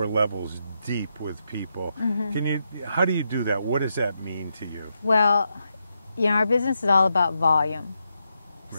levels deep with people. How do you do that? What does that mean to you? Well, you know, our business is all about volume.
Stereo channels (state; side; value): inverted; both; correlation -0.83